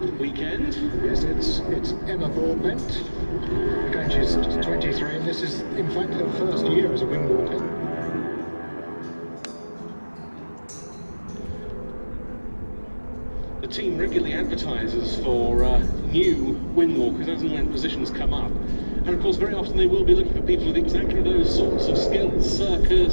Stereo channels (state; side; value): inverted; both; correlation -1.00